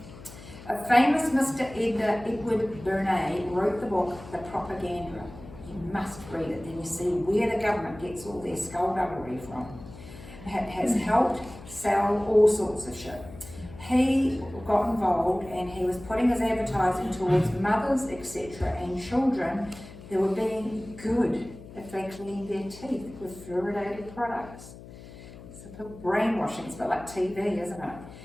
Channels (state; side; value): noise; left; hum, 16 dB below the sound